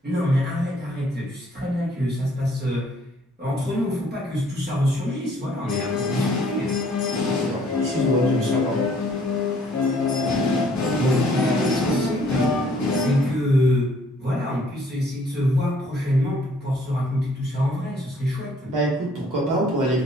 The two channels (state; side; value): normal; both; correlation 0.61